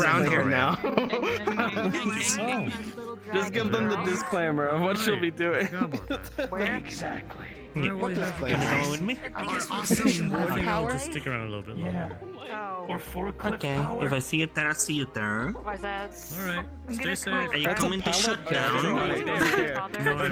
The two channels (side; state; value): both; identical; correlation 1.00